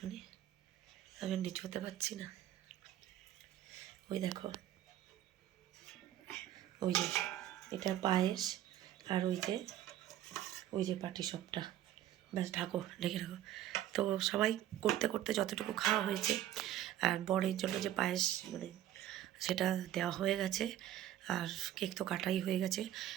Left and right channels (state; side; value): quieter; left; 12.5 dB